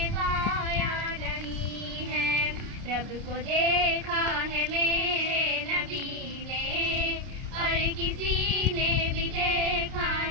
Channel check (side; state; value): left; late; 29 ms